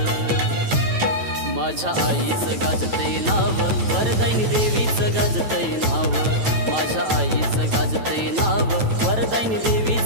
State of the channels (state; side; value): late; left; 9.1 ms